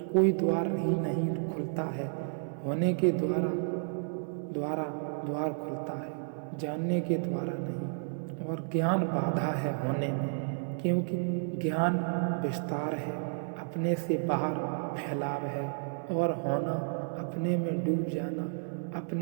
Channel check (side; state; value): left; silent; 57 dB below the other